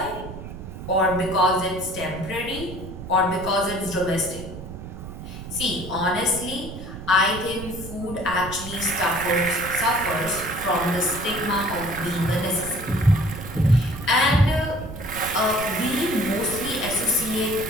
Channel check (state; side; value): noise; right; rumble, 11 dB below the sound